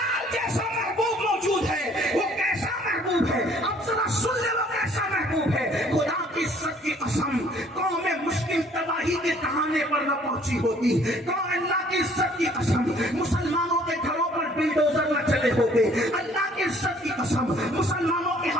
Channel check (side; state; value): both; normal; correlation 0.58